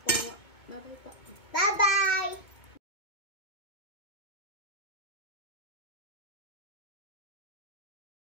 Bye po. Bye-bye!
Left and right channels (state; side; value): late; right; 2.0 ms